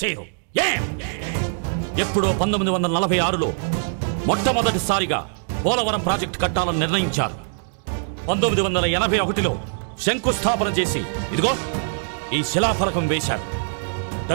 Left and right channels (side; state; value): left; silent; digital silence